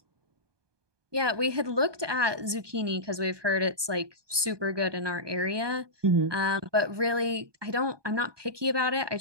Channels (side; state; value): left; late; 1.2 ms